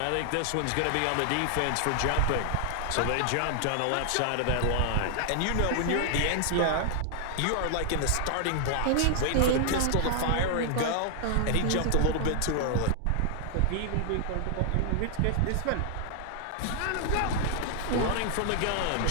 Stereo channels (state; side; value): different; both; correlation 0.00